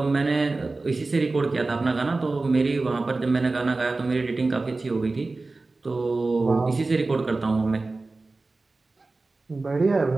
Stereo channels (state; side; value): quieter; left; 3.5 dB